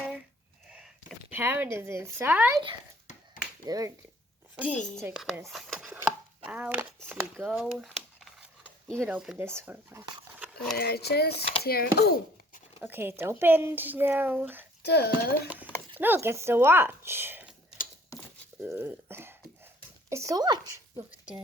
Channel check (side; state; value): both; normal; correlation 0.56